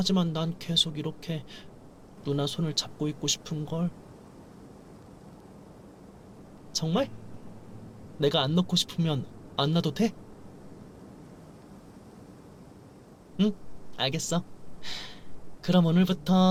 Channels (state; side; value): identical; both; correlation 1.00